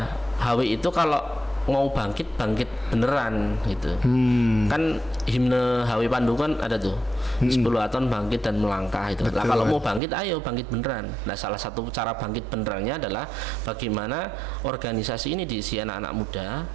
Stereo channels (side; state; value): left; drops out; at 10.0 s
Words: HW itu kalau mau bangkit beneran gitu. Kan himne HW Pandu kan ada tuh, Hizbul Waton bangkit dan melangkah itu. Nah, kalau mau bangkit, ayo bangkit beneran. Nah, salah satu cara bangkit benerannya adalah bagaimana organisasi ini diisi anak-anak muda.